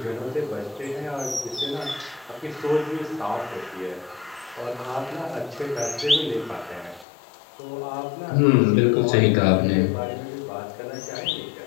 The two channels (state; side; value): drops out; right; at 7.1 s